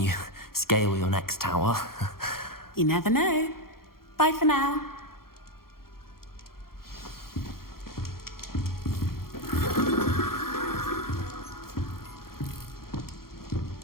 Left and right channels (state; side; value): late; right; 0.93 ms